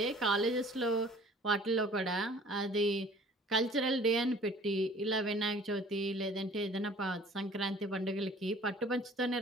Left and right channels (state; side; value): normal; both; correlation 0.51